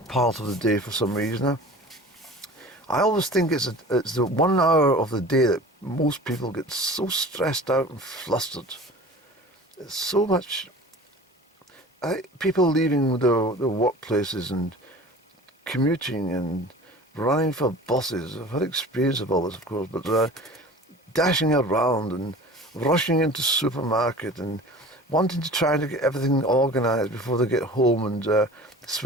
part of the day for some reason. I always think it's the 1 hour of the day that most people get so stressed out and flustered. There's so much people leaving their workplaces and commuting and running for buses. I've had experience of all this, of course, but dashing around and rushing into supermarket and wanting to try to get everything organised before they get home and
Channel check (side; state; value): both; normal; correlation 0.41